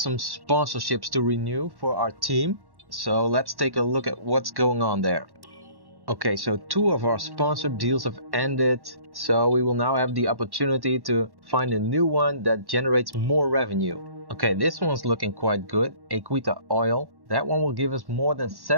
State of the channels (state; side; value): late; left; 1.1 ms